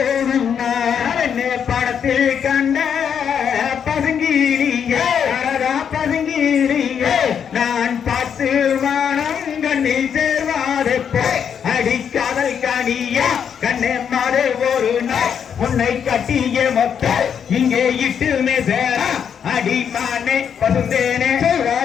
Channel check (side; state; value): right; quieter; 7.8 dB